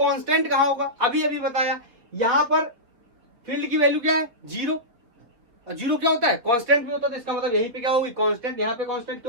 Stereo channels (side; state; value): left; late; 4.5 ms